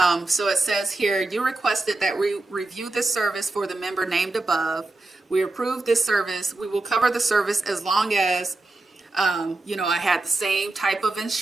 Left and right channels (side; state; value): left; quieter; 3.0 dB